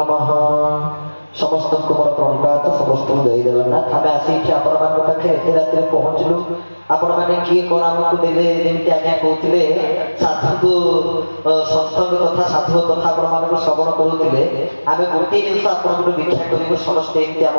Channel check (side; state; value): both; inverted; correlation -1.00